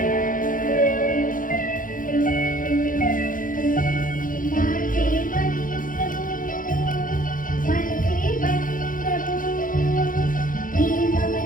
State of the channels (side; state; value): right; late; 0.39 ms